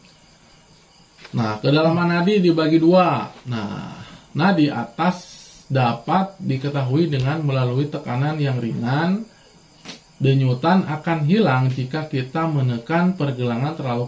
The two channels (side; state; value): both; identical; correlation 1.00